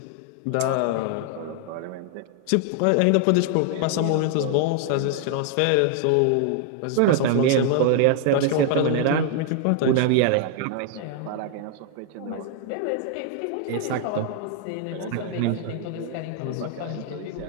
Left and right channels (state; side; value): different; both; correlation 0.00